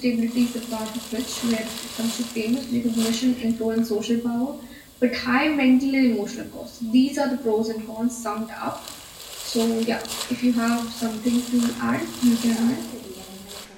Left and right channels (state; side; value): identical; both; correlation 1.00